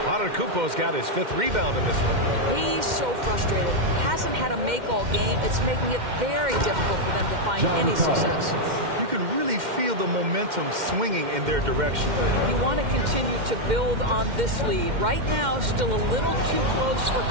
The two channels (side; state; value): left; late; 2.1 ms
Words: Antetokounmpo's got his 5th rebound in this one. He's so frustrated. Hasn't had a make all game. It's making it very difficult for them to find any success. You can really feel the momentum swinging in their direction. You want to continue to build on this lead. Right now, still a little too close for